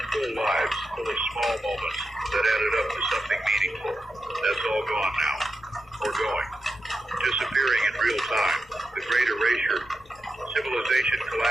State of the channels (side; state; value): both; normal; correlation 0.88